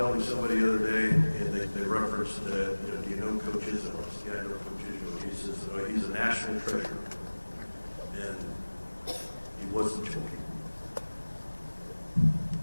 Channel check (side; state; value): both; inverted; correlation -1.00